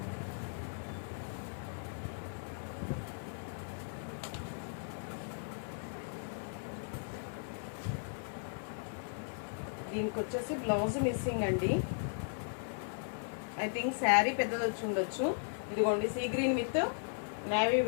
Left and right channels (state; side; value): silent; right; 53 dB below the other